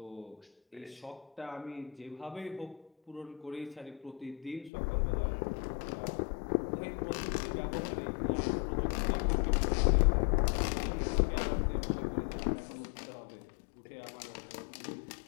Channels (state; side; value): drops out; right; at 4.7 s